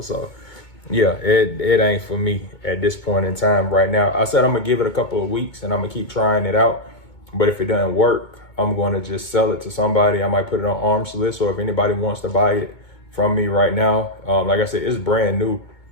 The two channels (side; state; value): right; late; 2.2 ms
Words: So yeah, it ain't for me at this point in time right now. I said I'm gonna give it a couple of weeks and I'm gonna keep trying it out. But if it doesn't work, I'm gonna just sell it to somebody. I might put it on arms list, or if anybody wants to buy it from me right now, like I said, it's brand new.